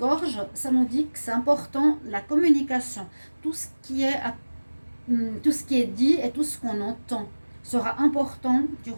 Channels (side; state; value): both; inverted; correlation -1.00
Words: ça nous dit que c'est important la communication. Tout ce qui est dit et tout ce qu'on entend sera important